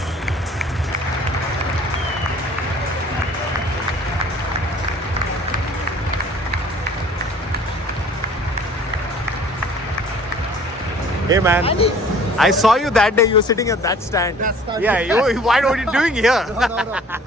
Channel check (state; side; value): normal; both; correlation 0.51